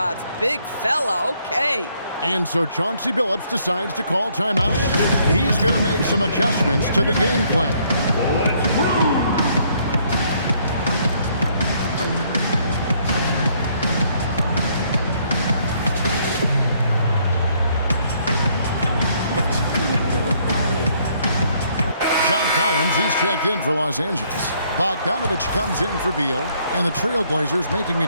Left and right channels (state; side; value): inverted; both; correlation -0.67